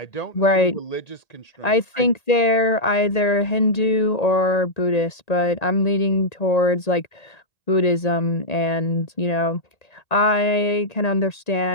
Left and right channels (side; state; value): right; late; 1.9 ms